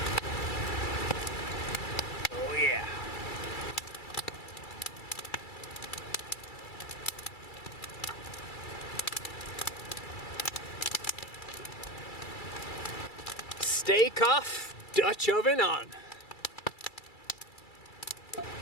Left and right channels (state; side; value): late; right; 2.3 ms